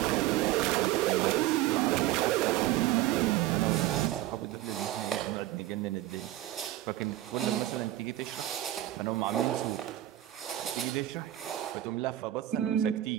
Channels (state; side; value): quieter; left; 14.0 dB